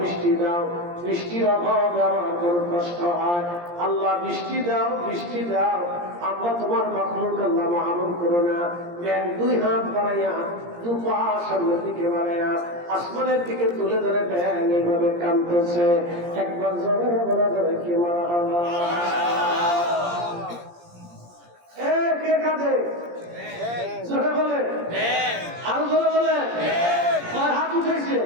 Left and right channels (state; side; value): late; left; 17 ms